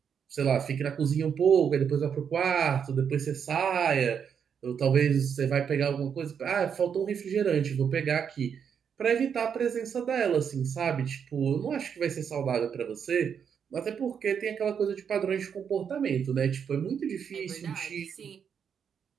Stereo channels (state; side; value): quieter; left; 7.4 dB